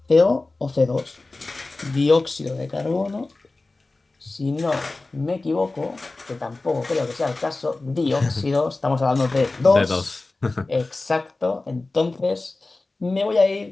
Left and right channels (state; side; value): quieter; right; 3.3 dB